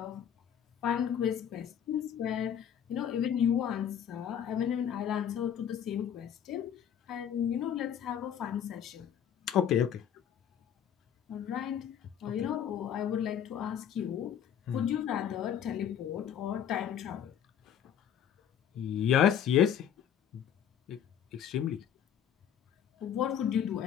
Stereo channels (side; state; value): right; quieter; 9.1 dB